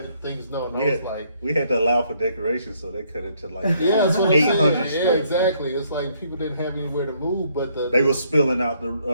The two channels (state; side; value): inverted; both; correlation -0.68